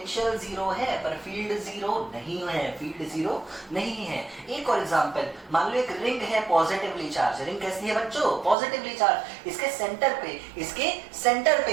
जीरो है पर फील्ड जीरो नहीं है, फील्ड जीरो नहीं है। एक और एग्जांपल, मान लो एक रिंग है पॉजिटिवली चार्ज, रिंग कैसी है बच्चों? Positively charge. इसके सेंटर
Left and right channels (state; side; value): drops out; left; at 8.6 s